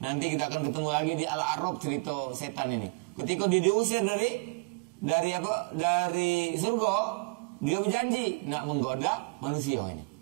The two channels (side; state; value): left; quieter; 29.1 dB